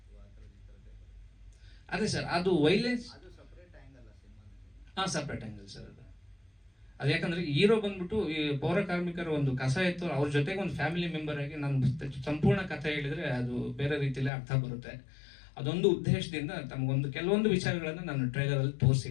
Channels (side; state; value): right; drops out; at 14.3 s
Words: ಅದೇ ಸರ್, ಅದು ವೈಲೆನ್ಸ್ ಸಪ್ರೇಟ್ ಆಂಗಲ್ ಸರ್. ಅದು ಯಾಕಂದ್ರೆ ಹೀರೋ ಬಂದ್ಬಿಟ್ಟು ಈ ಪೌರ ಕಾರ್ಮಿಕರ ಒಂದು ಕಸ ಇತ್ತು, ಅವ್ರ ಜೊತೆಗೆ ಒಂದು ಫ್ಯಾಮಿಲಿ ಮೆಂಬರ್ ಆಗಿ ನಾನು ಸಂಪೂರ್ಣ ಕಥೆ ಹೇಳಿದ್ರೆ ಅದು ಬೇರೆ ರೀತಿಯಲ್ಲಿ ಅರ್ಥ ಬರುತ್ತೆ. ಅದೊಂದು ಉದ್ದೇಶದಿಂದ ತಮಗೊಂದು ಕೆಲವೊಂದು ವಿಚಾರಗಳನ್ನ ನಾನು ಟ್ರೈಲರ್ ಅಲ್ಲಿ